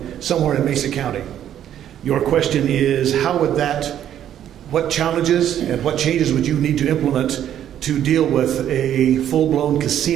somewhere in Mesa County. Your question is, how would that, what challenges and what changes would you need to implement to deal with a full-blown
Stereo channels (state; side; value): quieter; left; 10.6 dB